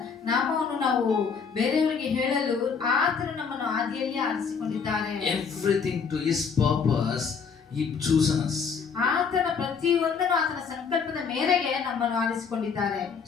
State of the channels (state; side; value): quieter; right; 5.9 dB